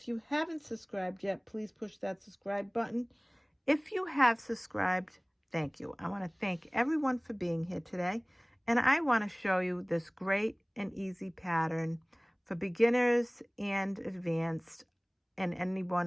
you haven't subscribed yet, please push that subscribe button. If you have subscribed, thank you. I want to thank everyone for being here today, and I want to show you this great and easy pattern for beginners and advanced and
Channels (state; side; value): identical; both; correlation 1.00